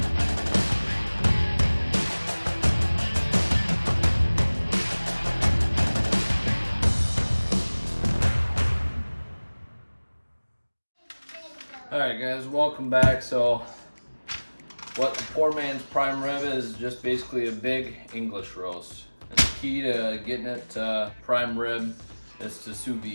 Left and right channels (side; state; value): both; inverted; correlation -1.00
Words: Alright guys, welcome back. So what the poor man's prime rib is just basically a big English roast. And the key to getting it to prime rib is to sous